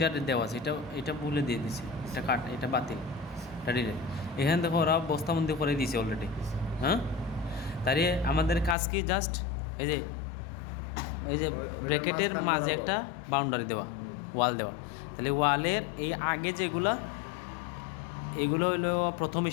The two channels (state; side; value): drops out; right; at 8.8 s